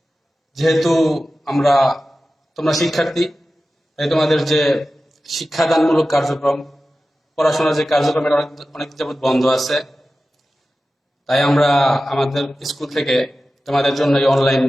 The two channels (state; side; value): normal; both; correlation 0.94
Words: যেহেতু তোমরা শিক্ষার্থী, তাই তোমাদের যে শিক্ষাদানমূলক কার্যক্রম, পড়াশোনার যে কার্যক্রম, এটা অনেক যাবৎ বন্ধ আছে। তাই আমরা আমাদের স্কুল থেকে তোমাদের জন্য এই অনলাইন